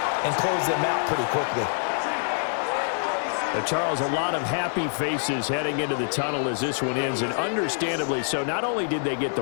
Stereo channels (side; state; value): right; silent; digital silence